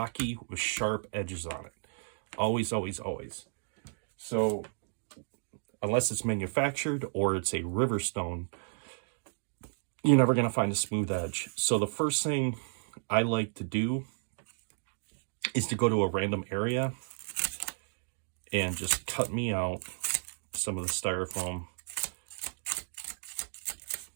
with sharp edges on it. Always, always, always. So unless it's manufactured or it's a river stone, you're never going to find a smooth edge. So the first thing I like to do is to go to a random area and just cut me out some of the styrofoam.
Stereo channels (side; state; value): left; silent; digital silence